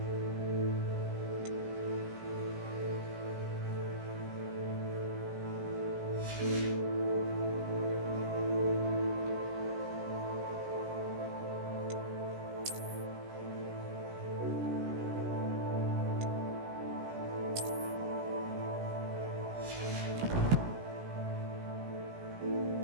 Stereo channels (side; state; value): left; late; 17 ms